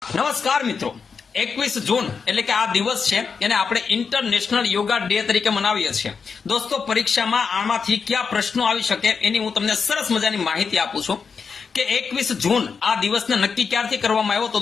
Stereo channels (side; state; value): right; quieter; 5.6 dB